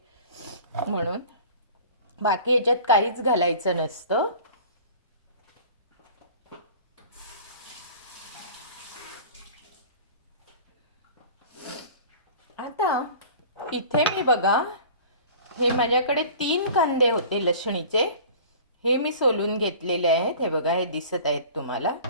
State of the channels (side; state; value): both; inverted; correlation -0.42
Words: म्हणून. बाकी याच्यात काहीच घालायचं नसतं. आता इथे मी बघा, हे माझ्याकडे 3 कांदे होते लसणीचे, हे मी सोलून घेतलेले आहेत. हे बघा, हे दिसत आहेत तुम्हाला.